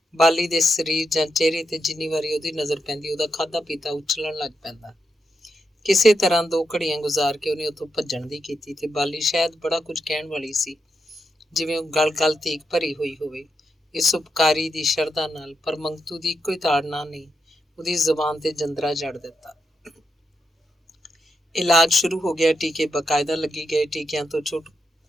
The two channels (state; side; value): normal; both; correlation 0.84